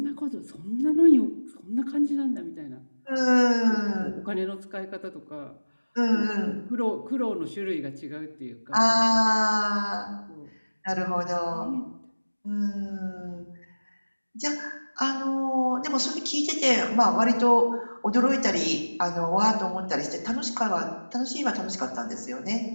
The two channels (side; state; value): both; inverted; correlation -1.00